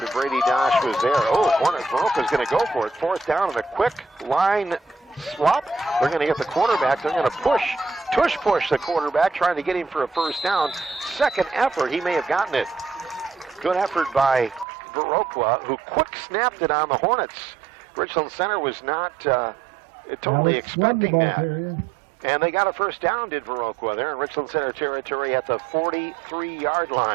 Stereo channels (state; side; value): drops out; left; at 14.7 s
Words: Brady Dosh was there. Viroqua's going to go for it. Fourth down and a quick line swap. They're going to get the quarterback. They're going to push the quarterback, trying to get him for a first down. Second effort, he may have gotten it. Good effort by Viroqua, who quick snapped it on the Hornets. Richland Center was not totally expecting that. And they got a first down, did Viroqua. They're in Richland Center territory at the 43-yard